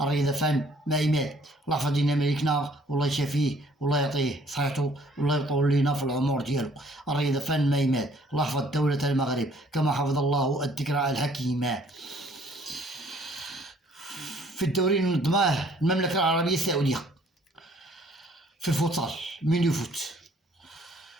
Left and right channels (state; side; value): normal; both; correlation 0.60